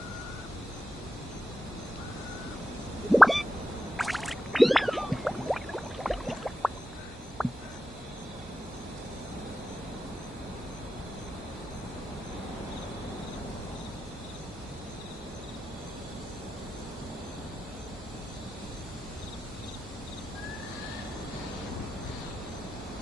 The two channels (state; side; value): normal; both; correlation 0.90